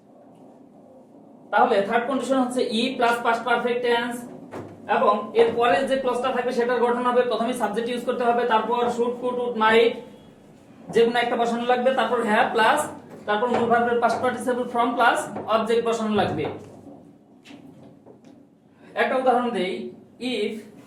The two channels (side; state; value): both; identical; correlation 1.00